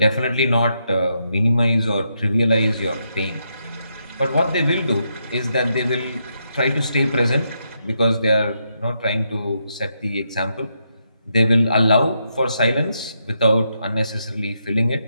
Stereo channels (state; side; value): inverted; both; correlation -0.80